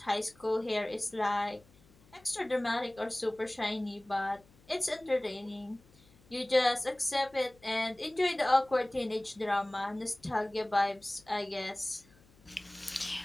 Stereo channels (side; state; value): left; noise; hum, 28 dB below the sound